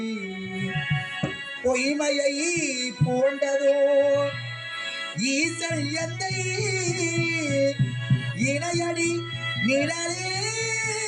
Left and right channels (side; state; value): both; identical; correlation 1.00